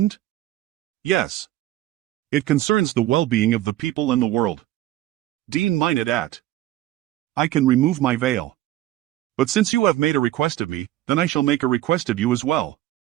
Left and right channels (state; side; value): quieter; left; 14.6 dB